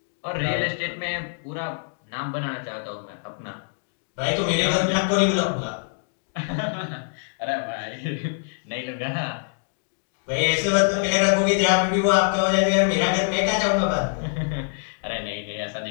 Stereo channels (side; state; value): right; silent; digital silence